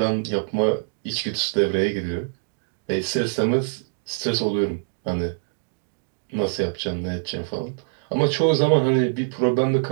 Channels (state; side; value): silent; left; digital silence